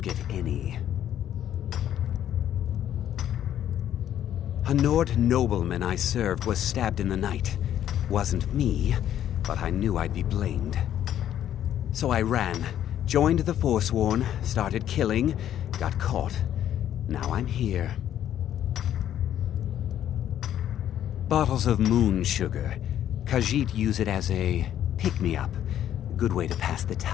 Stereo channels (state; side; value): quieter; right; 10.9 dB